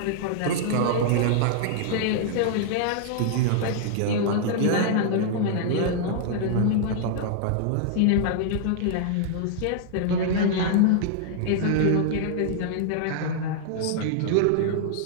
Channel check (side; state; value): both; different; correlation -0.01